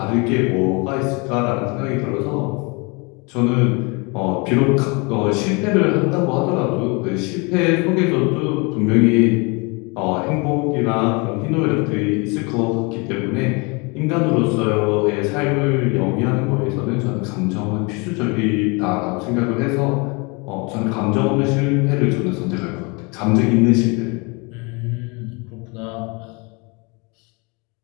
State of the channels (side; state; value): right; quieter; 29.6 dB